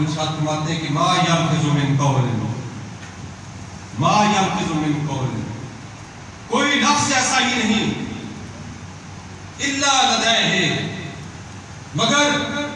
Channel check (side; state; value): both; identical; correlation 1.00